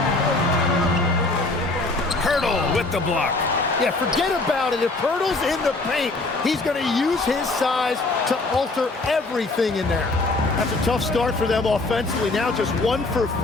Hurdle with the block. Yeah, forget about it. If Pirtle's in the paint, he's going to use his size to alter everything in there. That's a tough start for them offensively. Now just 1 for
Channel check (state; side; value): quieter; right; 3.2 dB